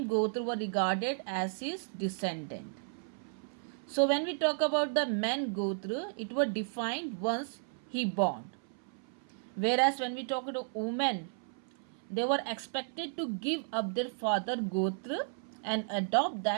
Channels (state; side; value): silent; left; 55 dB below the other